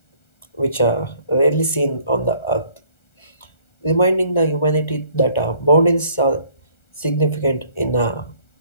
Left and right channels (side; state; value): right; late; 1.4 ms